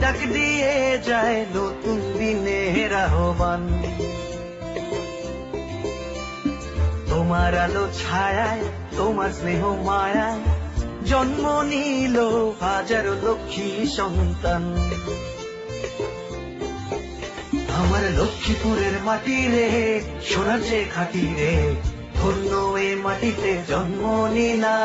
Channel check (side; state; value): both; identical; correlation 1.00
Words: দিয়ে যায় নতুন দিনের আহ্বান। তোমার আলো ছায়ায়, তোমার স্নেহ মায়ায় জন্ম নিল হাজারো লক্ষ্মী সন্তান। আমার লক্ষ্মীপুরের মাটি রে, সোনার চেয়ে খাঁটি রে, ধন্য এ মাটিতে জন্ম